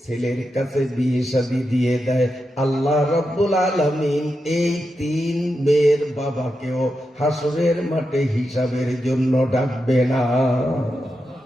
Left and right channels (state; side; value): normal; both; correlation 0.88